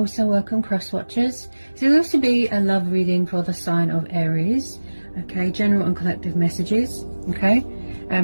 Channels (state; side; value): inverted; both; correlation -1.00